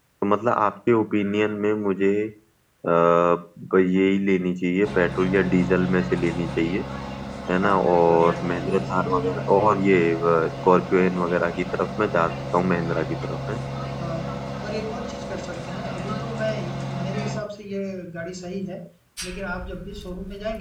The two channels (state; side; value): identical; both; correlation 1.00